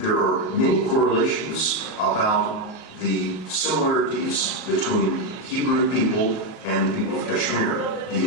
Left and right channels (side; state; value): right; late; 38 ms